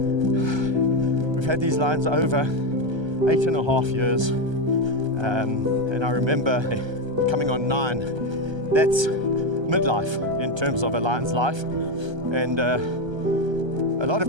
We've had these lions over 8.5 years. And I remember coming on 9. That's midlife in terms of a lion's life. And a lot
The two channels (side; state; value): left; late; 1.3 ms